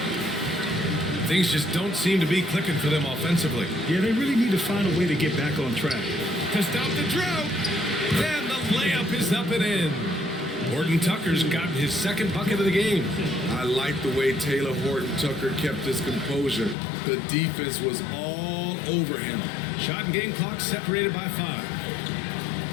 Things just don't seem to be clicking for them offensively. Yeah, they really need to find a way to get back on track. To stop the drought. And the layup is up and in. Horton Tucker's gotten his second bucket of the game. I like the way Taylor Horton Tucker kept his composure. The defense was all over him. Shot and game clock separated by 5.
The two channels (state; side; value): drops out; right; at 16.8 s